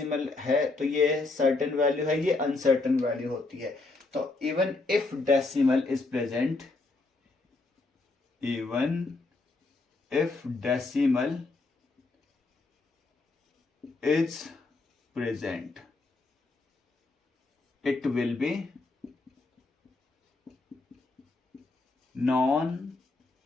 है तो ये सर्टेन वैल्यू है, ये अनसर्टेन वैल्यू होती है, तो even if decimal is present, it will be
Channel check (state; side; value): quieter; right; 3.5 dB